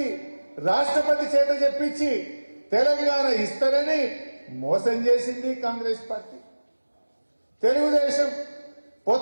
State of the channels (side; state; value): both; inverted; correlation -1.00